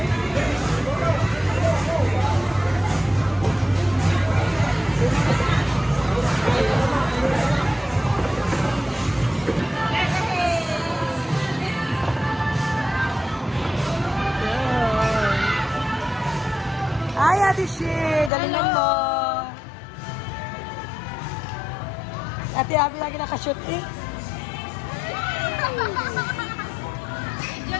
Hi, Ate Shi. Galingan mo. Ate Abby lagi nakashoot eh.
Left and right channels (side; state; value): right; drops out; at 18.3 s